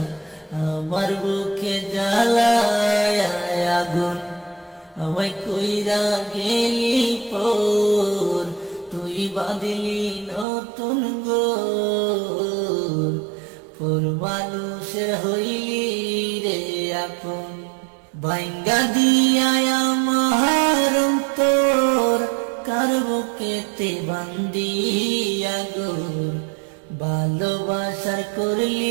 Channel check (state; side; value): drops out; left; at 10.5 s